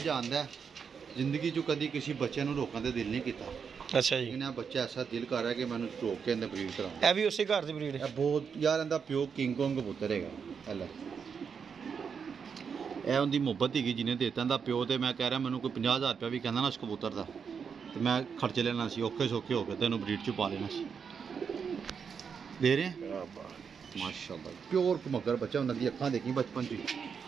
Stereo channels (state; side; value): quieter; left; 6.4 dB